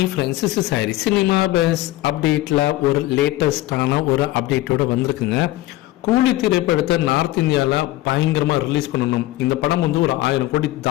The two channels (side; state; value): right; quieter; 16.8 dB